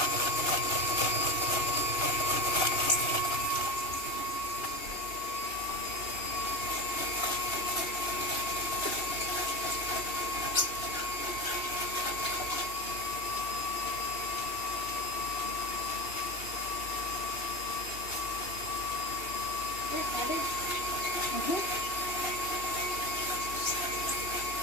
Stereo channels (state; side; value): late; right; 2.8 ms